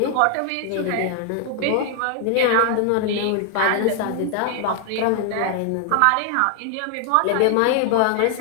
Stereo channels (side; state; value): both; different; correlation 0.00